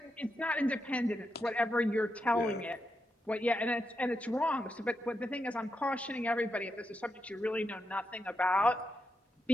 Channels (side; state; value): both; normal; correlation 0.85